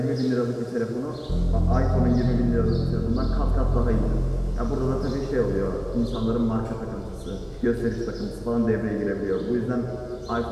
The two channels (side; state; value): both; identical; correlation 1.00